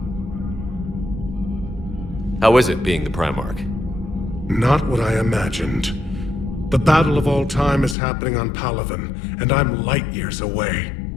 How is it being the Primarch? Not what I imagined. The battle of all time is happening on Palaven, and I'm light years away,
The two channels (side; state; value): right; drops out; at 8.0 s